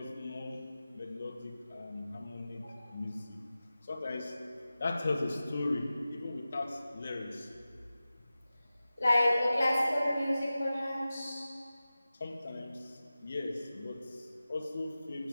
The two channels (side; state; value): both; inverted; correlation -0.95